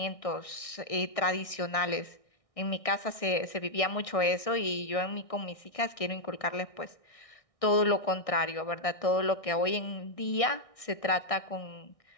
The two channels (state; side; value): late; right; 1.6 ms